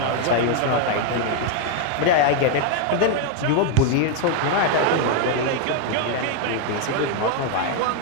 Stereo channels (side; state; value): both; different; correlation 0.01